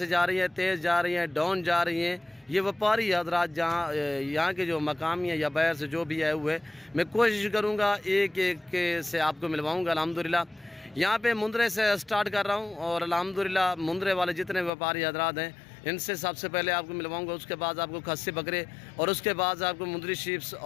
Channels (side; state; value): right; drops out; at 14.7 s